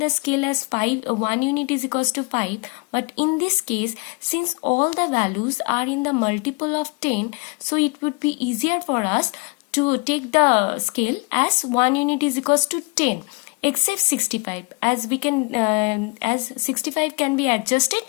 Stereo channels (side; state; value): right; quieter; 30.1 dB